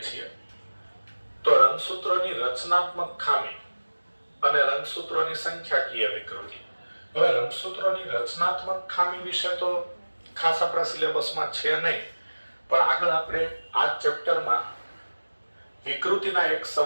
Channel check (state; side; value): inverted; both; correlation -1.00